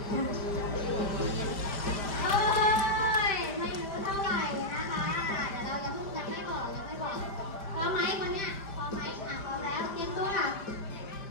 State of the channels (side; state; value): right; late; 5.1 ms